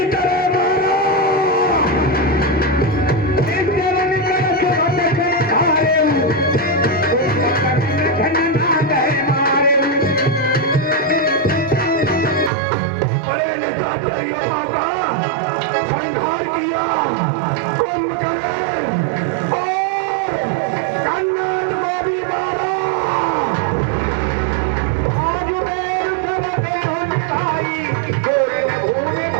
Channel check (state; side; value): drops out; left; at 12.5 s